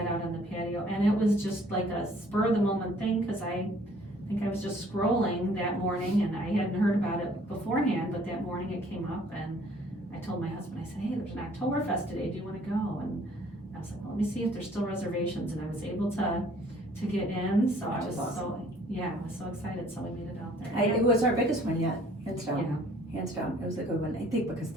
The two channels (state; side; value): normal; both; correlation 0.57